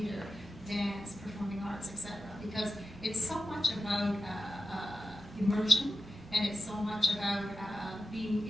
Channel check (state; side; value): normal; both; correlation 0.93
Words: dance, performing arts, etc. Because it's so much about immersion, and it's so much about being